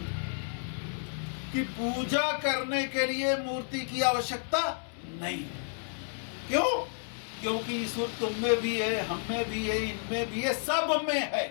कि पूजा करने के लिए मूर्ति की आवश्यकता नहीं। क्यों? क्योंकि ईश्वर तुम में भी है, हम में भी है, इनमें भी है, सब में है।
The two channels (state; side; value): silent; right; 57 dB below the other